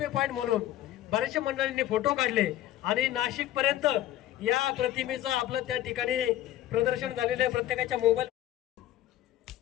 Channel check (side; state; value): right; quieter; 13.4 dB